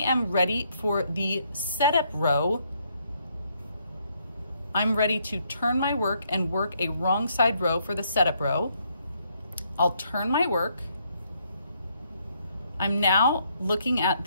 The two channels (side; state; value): both; inverted; correlation -0.72